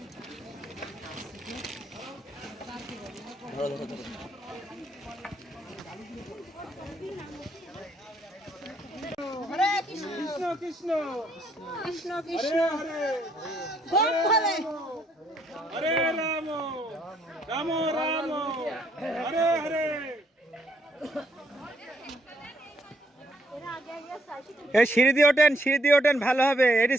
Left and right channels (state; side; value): normal; both; correlation 0.70